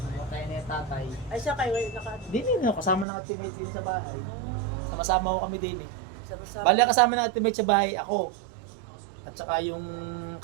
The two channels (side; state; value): left; drops out; at 3.1 s